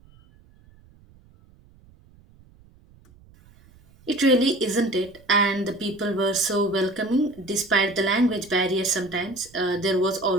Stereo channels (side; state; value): right; noise; rumble, 28 dB below the sound